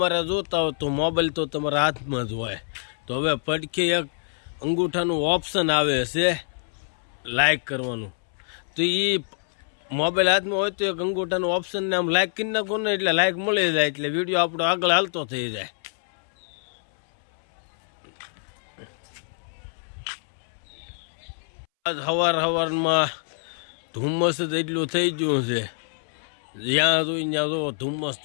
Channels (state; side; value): silent; right; 61 dB below the other